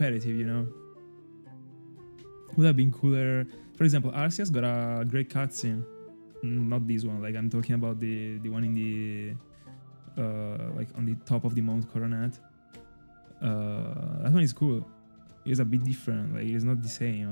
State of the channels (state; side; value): inverted; both; correlation -1.00